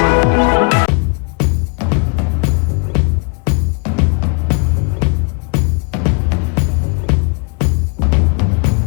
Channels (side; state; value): right; quieter; 35.4 dB